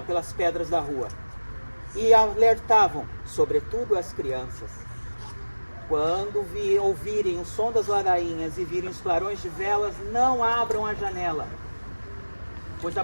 pelas pedras da rua. E alertavam, sobretudo as crianças. Quando ouvirem o som das ladainhas e virem os clarões de velas, não abram a janela, pois a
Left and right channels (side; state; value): both; inverted; correlation -1.00